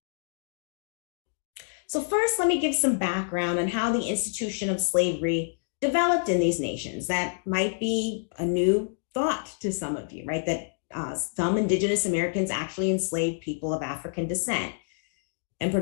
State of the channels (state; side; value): silent; right; digital silence